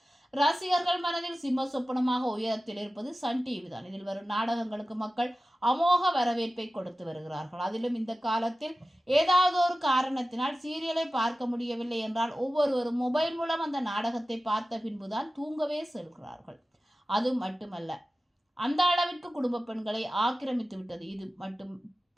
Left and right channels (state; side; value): normal; both; correlation 0.95